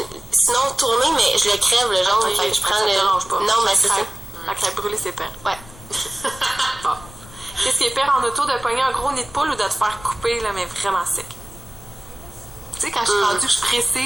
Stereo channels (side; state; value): left; noise; rumble, 19 dB below the sound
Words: sinon, tourner, mais je le crève, le jaune. Ok, fait que je prends ça te le... dérange pas. Non, mais La c'est ça. crêpe. La crêpe brûlée, c'est pire. Ouais. Bon. Qu'est-ce qui est pire en auto, de pogner un gros nid de poule ou de te faire couper, là, mais vraiment sec? Tu sais, quand je suis rendue que je